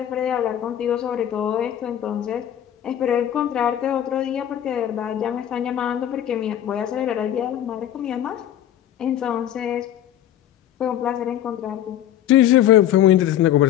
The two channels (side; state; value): right; quieter; 11.3 dB